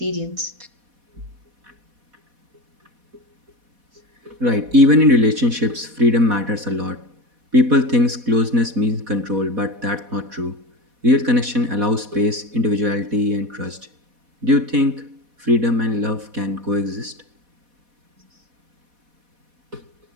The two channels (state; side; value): late; left; 4.1 ms